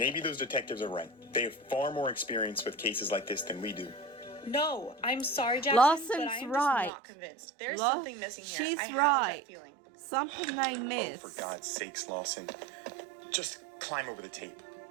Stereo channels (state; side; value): drops out; left; at 6.9 s